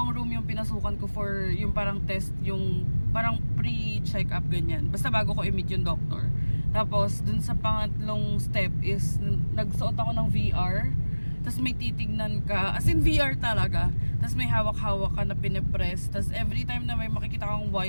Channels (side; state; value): both; inverted; correlation -1.00